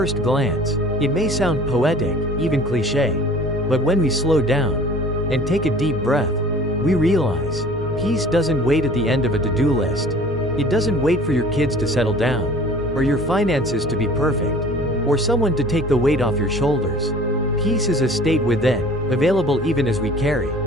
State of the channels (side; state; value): both; normal; correlation 0.47